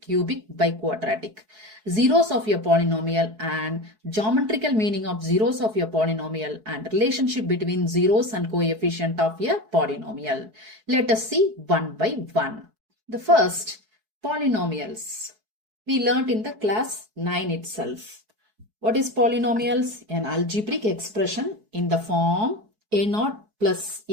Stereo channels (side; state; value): left; late; 4.6 ms